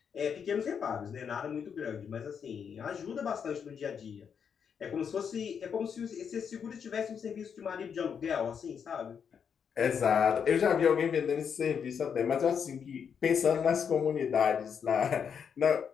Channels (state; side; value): quieter; right; 7.2 dB